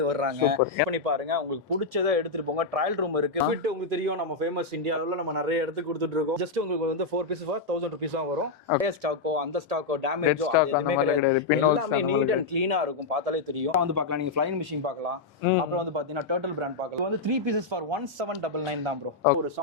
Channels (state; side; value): quieter; right; 3.9 dB